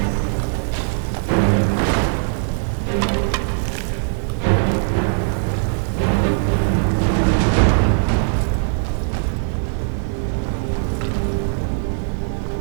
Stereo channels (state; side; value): silent; left; 66 dB below the other